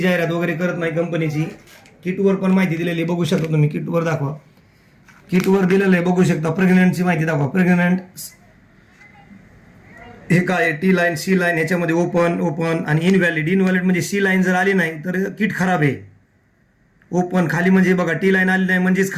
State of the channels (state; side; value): identical; both; correlation 1.00